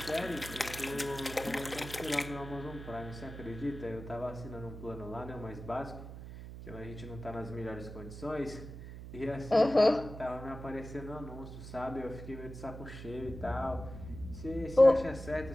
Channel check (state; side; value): noise; right; hum, 11 dB below the sound